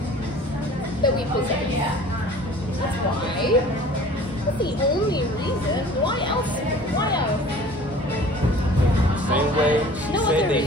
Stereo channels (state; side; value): normal; both; correlation 0.47